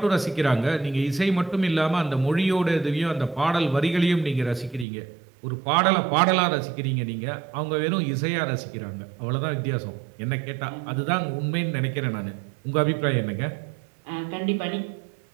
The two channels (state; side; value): drops out; left; at 4.9 s